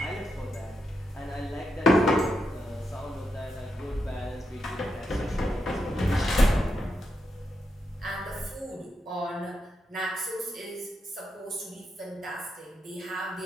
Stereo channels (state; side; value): normal; both; correlation 0.83